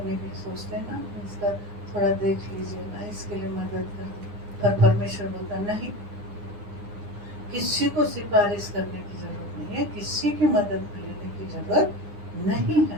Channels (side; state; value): left; late; 9.8 ms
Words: की सोचते हैं ना, इसका थोड़ा देख लीजिए ना, इसके लिए मदद कर दो, पर परमेश्वर बोलता नहीं, किसी को सिफारिश करने की जरूरत नहीं है, किसी की मदद लेने की जरूरत नहीं